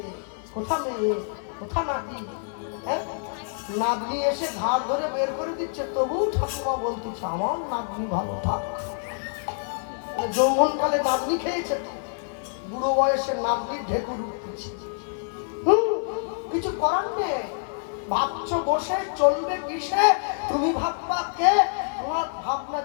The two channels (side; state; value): right; silent; 61 dB below the other